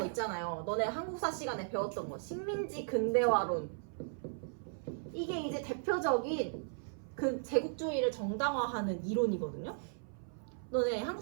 있잖아요. 너네 한국사 시간에 배웠던 거. 식민지 근대화론. 이게 이제 대표적인 그 제국주의를 정당화하는 이론이거든요. 너네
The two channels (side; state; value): left; silent; 53 dB below the other